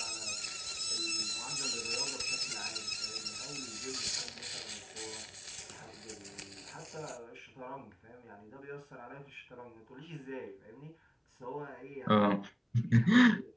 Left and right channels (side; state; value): both; identical; correlation 1.00